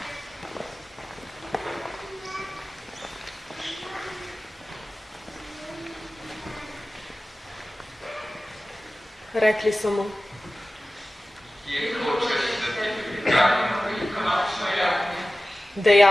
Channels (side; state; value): both; normal; correlation 0.96